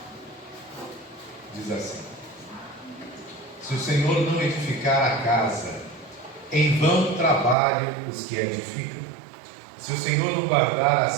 Diz assim: se o Senhor não edificar a casa, em vão trabalham os que a edificam. Se o Senhor não guardar a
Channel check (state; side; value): drops out; left; at 7.6 s